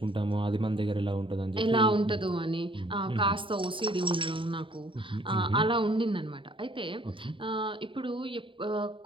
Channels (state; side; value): late; left; 0.25 ms